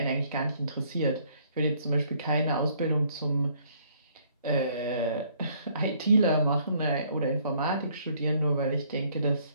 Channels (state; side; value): inverted; both; correlation -0.64